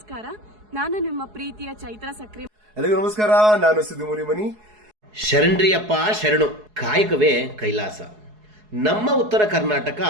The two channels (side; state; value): left; late; 4.7 ms